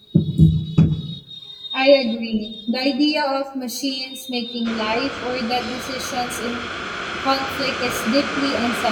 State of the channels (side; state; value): both; identical; correlation 1.00